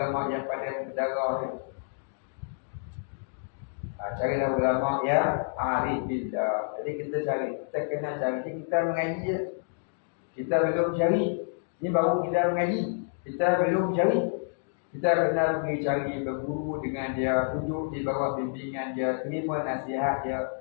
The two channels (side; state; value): right; silent; digital silence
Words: yang pandai mentedara. Carilah ulama yang arif billah. Jadi kita kena cari. Kita mengaji je. Kita belum cari. Ini baru kita mengaji. Kita belum cari. Kita kena pergi cari berguru dengan dia, duduk di bawah bimbingan dia, terima nasihat dia,